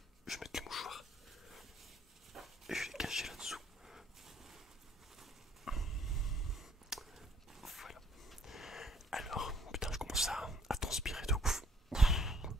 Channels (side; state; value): both; normal; correlation 0.64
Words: mettre le mouchoir. Et je vais les cacher là-dessous. Voilà. Alors, putain, je commence à transpirer de ouf.